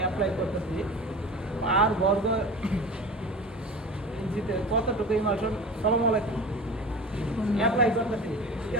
করতেছি আর বর্গ ইঞ্চিতে কতটুকু ইমালশন সালাম আলাইকুম অ্যাপ্লাই করতেছি, ঠিক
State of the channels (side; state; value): both; normal; correlation 0.35